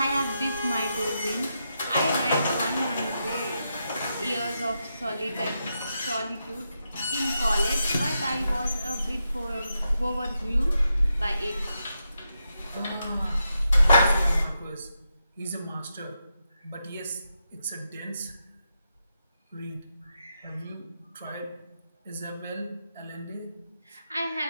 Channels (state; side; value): inverted; both; correlation -0.85